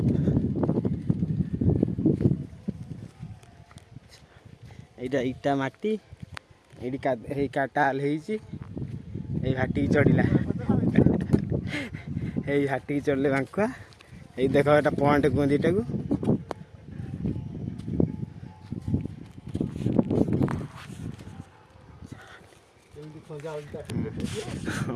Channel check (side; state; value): both; identical; correlation 1.00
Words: यहाँ इटा माटी ये काटाल घाटी चढ़ला ये घाटी चढ़ले बांकुआ ये देख एटा पॉइंट कहते इटा को